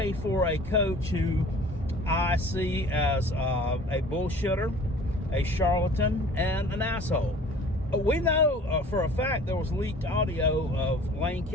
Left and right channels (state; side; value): normal; both; correlation 0.48